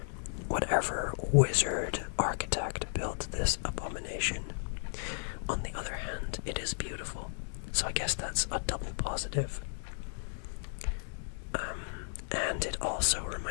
whatever wizard architect built this abomination. On the other hand, it is beautiful, so I guess that's a double positive. And it also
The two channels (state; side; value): silent; right; 55 dB below the other